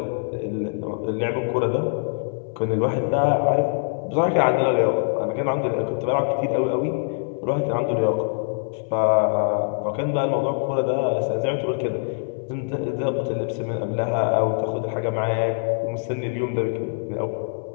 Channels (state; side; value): silent; right; 59 dB below the other